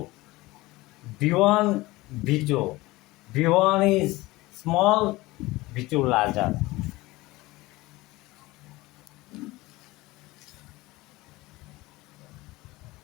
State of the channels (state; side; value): quieter; right; 20.1 dB